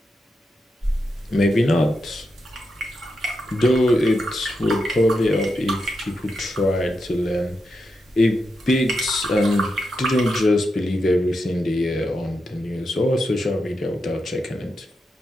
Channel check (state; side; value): normal; both; correlation 0.86